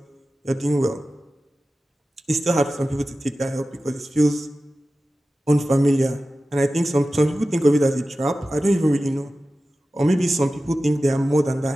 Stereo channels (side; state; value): both; normal; correlation 0.94